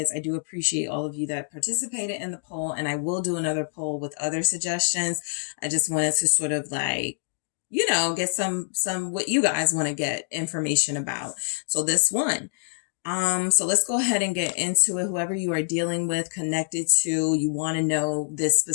I do appreciate all of you that participated in the poll, and I will do another poll with other suggestions. I just wanted to sort of like, you know, get some what you guys want to get information about. So this one. So let's go ahead and get into it. Whoever you are dealing with, connected to, you want to know this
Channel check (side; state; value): right; silent; digital silence